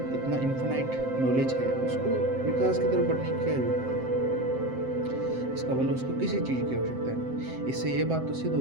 इतना इन्फिनाइट नॉलेज है, उसको विकास की तरफ बढ़ने की क्या जरूरत है? इसका मतलब उसको किसी चीज़ की आवश्यकता नहीं। इससे ये बात तो सिद्ध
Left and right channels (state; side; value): late; left; 7.7 ms